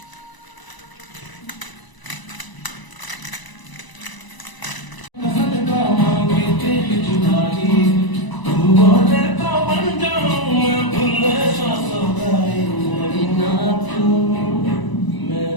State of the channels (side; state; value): right; late; 1.0 ms